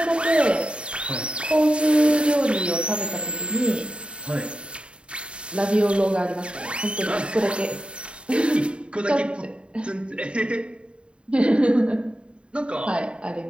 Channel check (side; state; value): left; late; 0.055 ms